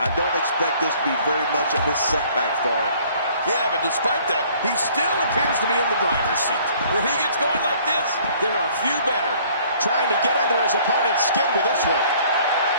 don't expect this to be very much of a setback for him. Yeah, but despite that, he still appears to be in the driver's seat. When he gets going like this, there are few better. Trying to get under his opponent's skin with this one.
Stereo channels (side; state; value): both; inverted; correlation -0.57